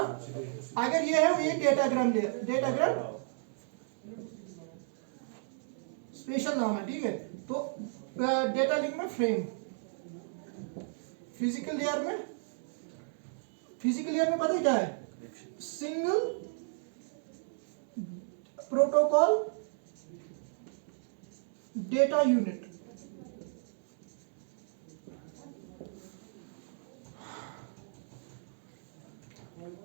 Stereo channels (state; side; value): silent; left; digital silence